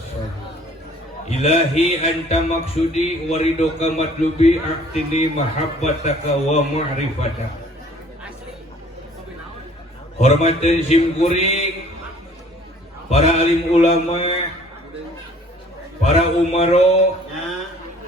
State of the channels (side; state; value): both; normal; correlation 0.54